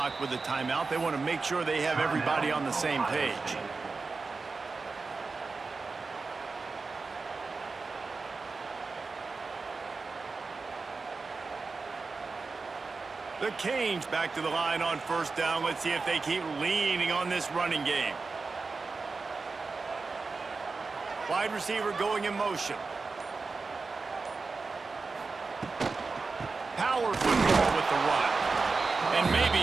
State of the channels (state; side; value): quieter; left; 4.2 dB